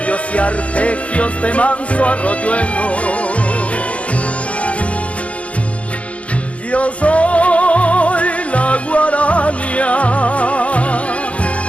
y arpegios de manso arroyuelo. Yo soy la guaraña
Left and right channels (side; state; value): right; late; 0.064 ms